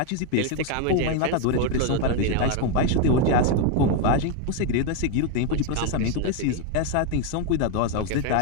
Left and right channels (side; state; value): both; different; correlation 0.02